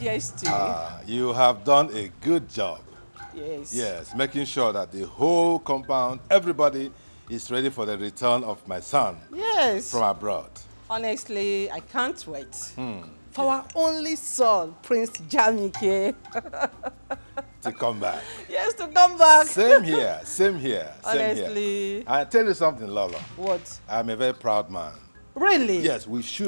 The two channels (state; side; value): inverted; both; correlation -1.00